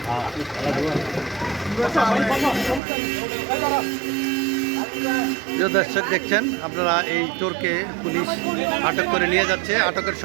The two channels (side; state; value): left; drops out; at 2.8 s